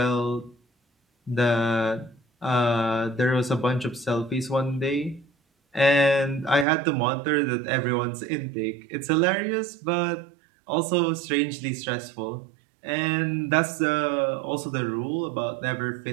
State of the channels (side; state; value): left; drops out; at 6.7 s